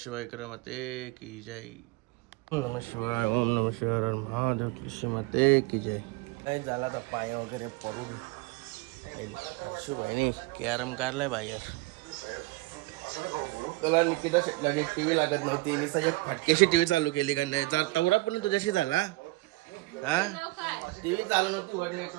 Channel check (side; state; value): left; quieter; 22.4 dB